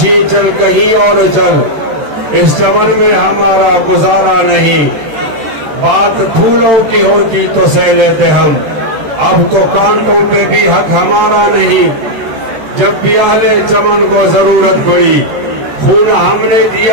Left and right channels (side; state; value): left; late; 13 ms